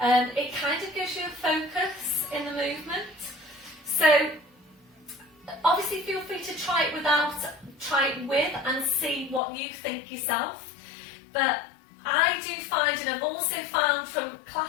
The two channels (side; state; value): right; drops out; at 9.4 s